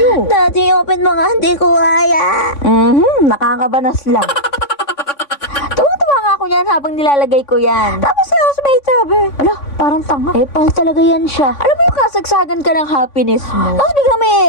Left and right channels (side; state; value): right; late; 3.6 ms